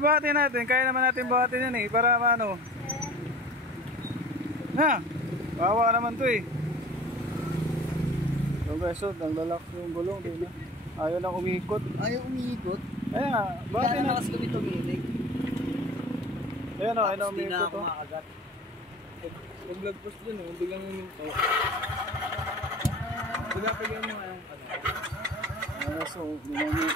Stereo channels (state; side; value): normal; both; correlation 0.41